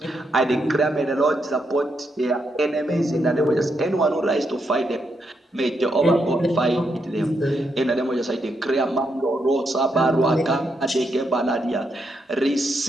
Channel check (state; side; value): normal; both; correlation 0.81